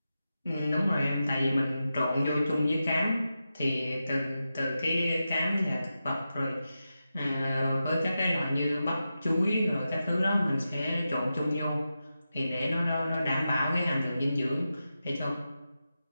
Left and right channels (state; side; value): inverted; both; correlation -0.91